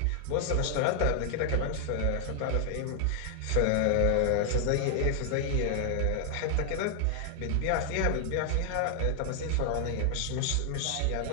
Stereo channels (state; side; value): different; both; correlation 0.00